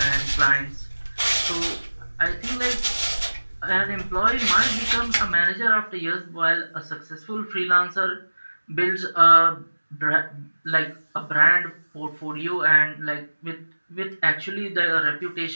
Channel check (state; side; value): inverted; both; correlation -1.00